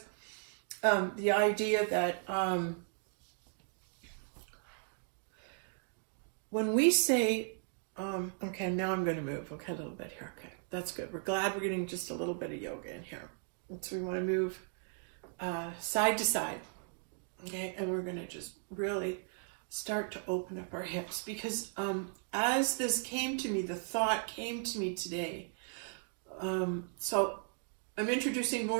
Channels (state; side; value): silent; left; 53 dB below the other